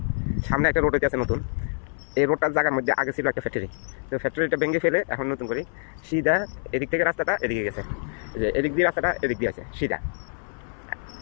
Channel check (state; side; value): silent; right; 59 dB below the other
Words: সামনে একটা রোড হইতে আছে নতুন। এই রোডটার জায়গার মধ্যে আগে ছিল একটা ফ্যাক্টরি, তো ফ্যাক্টরিটা ভেঙে ফেলে এখন নতুন করে সিধা এদিক থেকে রাস্তাটা এদিকে গেছে। যে এদিক দিয়ে রাস্তাটা এদিক দিয়ে আছে সিধা।